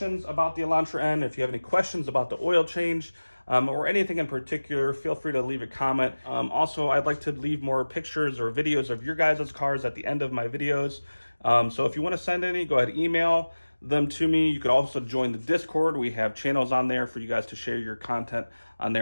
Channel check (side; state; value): both; inverted; correlation -1.00